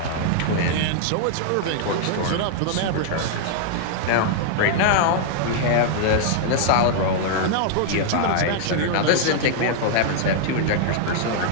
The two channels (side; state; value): both; different; correlation -0.01